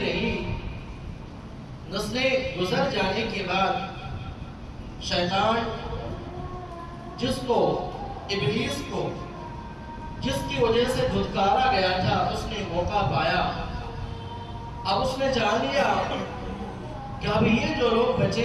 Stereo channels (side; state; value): both; identical; correlation 1.00